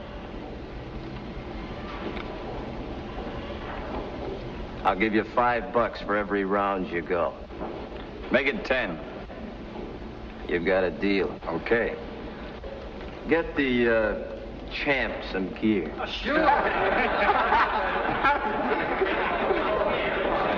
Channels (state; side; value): identical; both; correlation 1.00